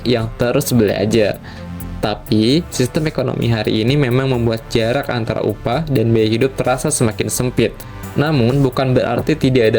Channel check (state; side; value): identical; both; correlation 1.00